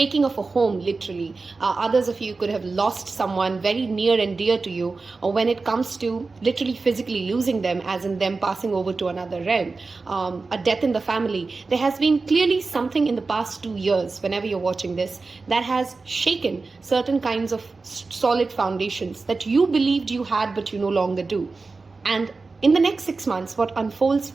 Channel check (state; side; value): quieter; left; 4.0 dB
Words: of a home, literally. Others of you could have lost someone very near and dear to you, or when it comes to literally physically losing them, as in them passing over to another realm, a death in the family. There has been clearly something in the past 2 years, whenever you're watching this, that has shaken certain kinds of solid foundations that you believed you had but you no longer do. And in the next 6 months, what unfolds